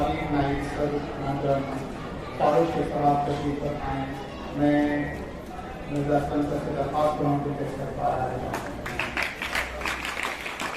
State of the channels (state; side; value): identical; both; correlation 1.00